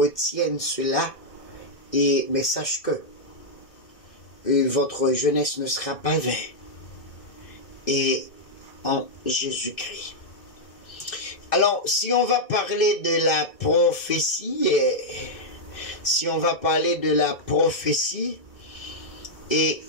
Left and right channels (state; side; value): late; right; 2.6 ms